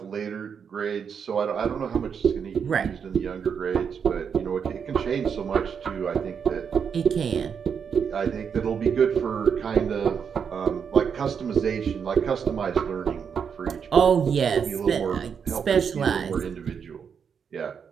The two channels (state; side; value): quieter; left; 6.9 dB